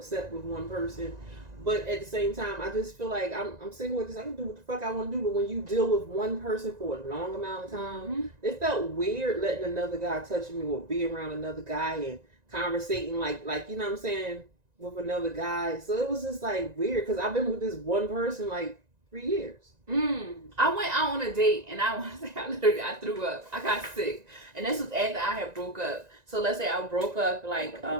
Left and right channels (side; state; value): left; late; 1.9 ms